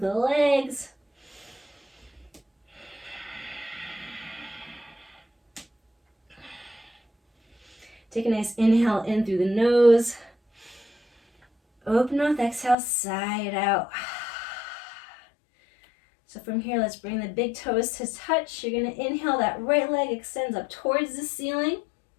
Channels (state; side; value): drops out; right; at 12.8 s